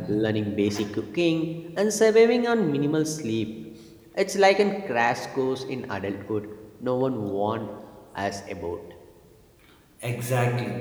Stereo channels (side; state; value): both; identical; correlation 1.00